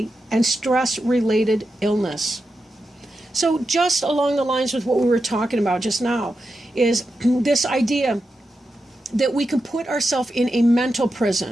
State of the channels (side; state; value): both; normal; correlation 0.89